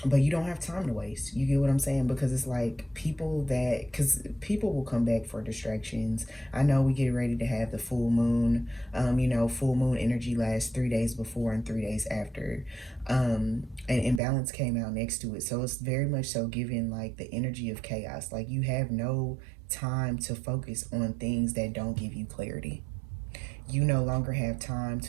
but you don't have time to waste. You get what I'm saying? Because it's like because people will come back for distractions. I know we get ready to have the full moon. Full moon energy lasts 3 days before and 3 days after. And imbalance came out next to it. So it's very much so giving like the energy of chaos. Like you have no time to focus on things that don't give you clarity. You no longer have time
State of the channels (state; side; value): drops out; left; at 14.2 s